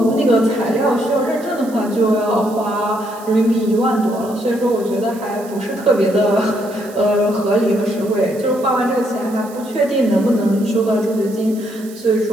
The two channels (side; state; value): right; noise; hiss, 21 dB below the sound